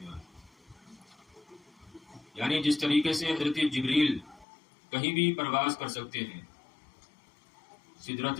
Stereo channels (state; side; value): drops out; right; at 4.5 s